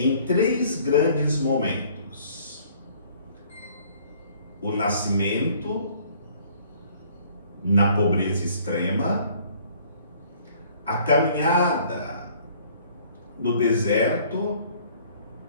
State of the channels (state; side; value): inverted; both; correlation -0.57